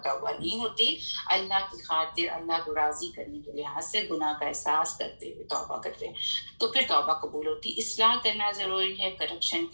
نہیں ہوتی. اللہ کی خاطر اللہ کو راضی کرنے کے لحاظ سے گناہ کا احساس کرتے ہوئے توبہ کرتے ہیں تو پھر توبہ قبول ہوتی. اصلاح کرنا ضروری ہے. کرپشن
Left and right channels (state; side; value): inverted; both; correlation -1.00